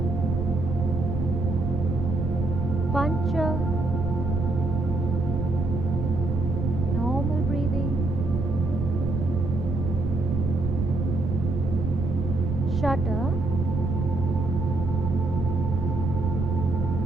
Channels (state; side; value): noise; right; rumble, 2 dB below the sound